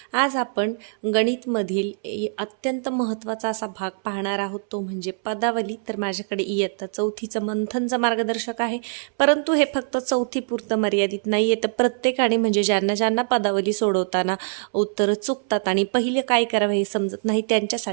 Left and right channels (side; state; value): left; silent; 63 dB below the other